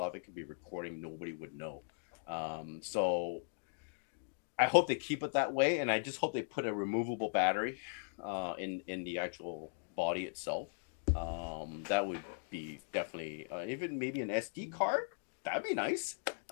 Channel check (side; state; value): right; silent; digital silence